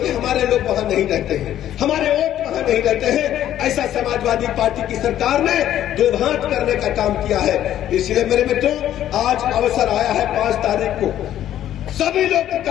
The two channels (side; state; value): right; quieter; 11.8 dB